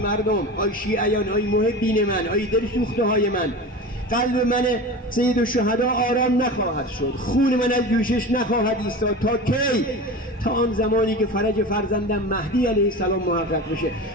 آی شیعیان، آی محبین من، آی دل سوخته های من، قلب من سید الشهدا آرام نخواهد شد، خون من از جوشش نخواهد ایستاد. تا کی؟ تا آن زمانی که فرج فرزندم مهدی علیه السلام محقق بشه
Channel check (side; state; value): both; normal; correlation 0.31